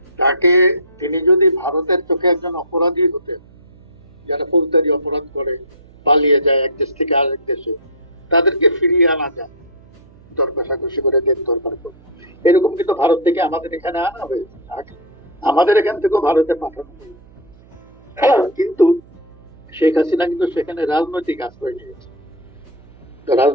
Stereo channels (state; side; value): noise; right; hum, 25 dB below the sound